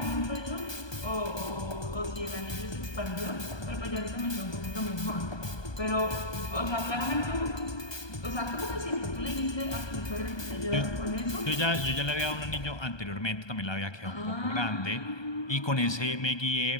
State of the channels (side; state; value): right; late; 1.2 ms